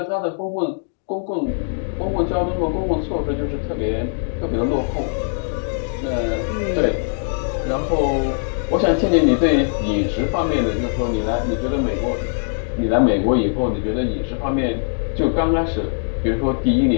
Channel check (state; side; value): silent; right; digital silence